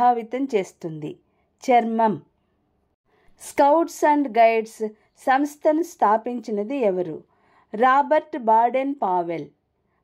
చేస్తుంది? చర్మం. స్కౌట్స్ అండ్ గైడ్స్ సంస్థను స్థాపించినది ఎవరు? Robert Baden Powell.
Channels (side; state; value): both; identical; correlation 1.00